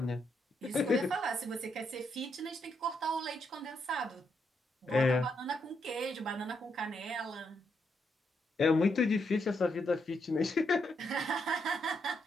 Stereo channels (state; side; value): normal; both; correlation 0.79